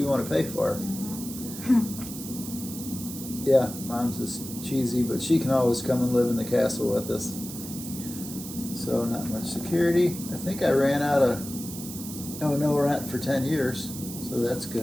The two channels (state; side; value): noise; right; hiss, 10 dB below the sound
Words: want to pay for. Yeah, mom's is cheesy, but she can always come and live in the castle with us. So not much security. I think I ran out of no rent for 10 years, so that's